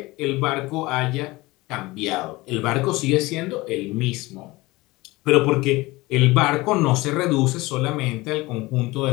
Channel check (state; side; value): quieter; right; 21.1 dB